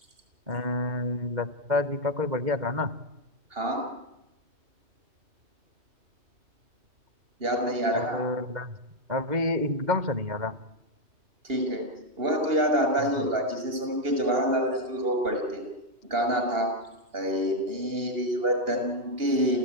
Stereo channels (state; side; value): late; left; 2.8 ms